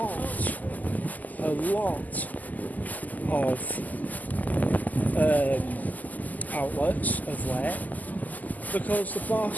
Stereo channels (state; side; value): late; right; 0.081 ms